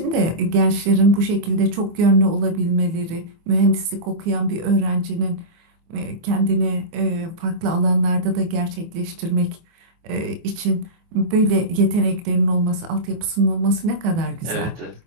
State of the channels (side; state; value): left; late; 24 ms